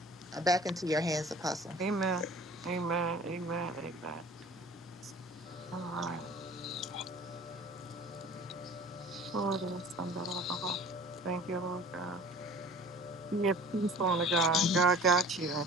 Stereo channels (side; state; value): left; noise; hum, 26 dB below the sound